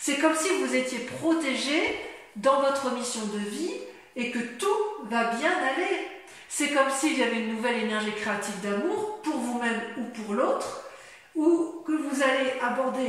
comme si vous étiez protégé dans votre mission de vie et que tout va bien aller. C'est comme s'il y avait une nouvelle énergie créative d'amour pour vous-même ou pour l'autre, ou que vous allez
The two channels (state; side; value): identical; both; correlation 1.00